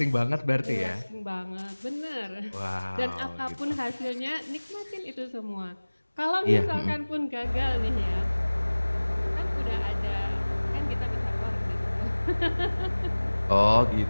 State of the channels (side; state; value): both; inverted; correlation -1.00